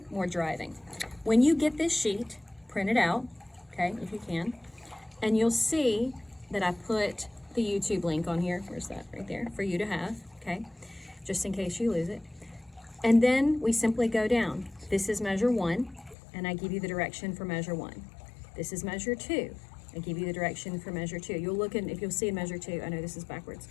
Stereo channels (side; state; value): right; drops out; at 16.2 s